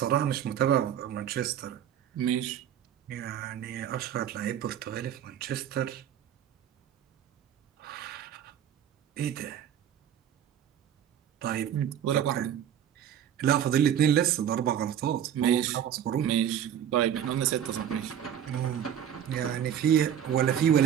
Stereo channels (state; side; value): quieter; left; 9.7 dB